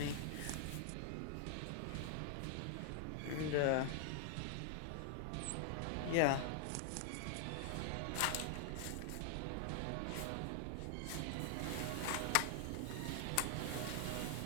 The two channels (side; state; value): both; different; correlation 0.00